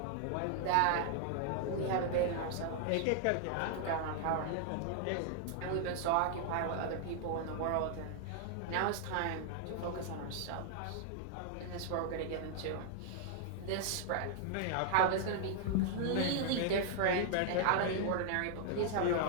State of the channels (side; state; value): both; different; correlation -0.01